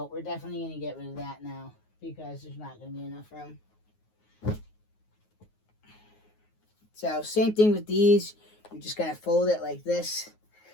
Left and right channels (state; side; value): late; right; 9.4 ms